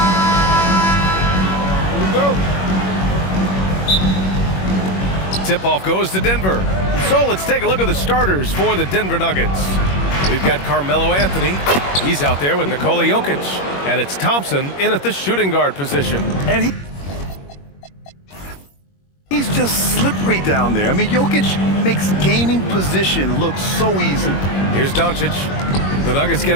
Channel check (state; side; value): late; right; 21 ms